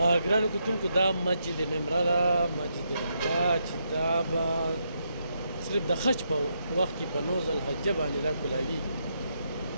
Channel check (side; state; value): both; inverted; correlation -0.80